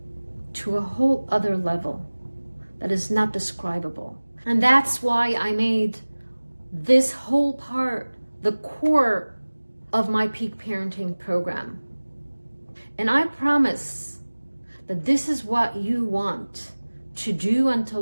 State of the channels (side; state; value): both; inverted; correlation -1.00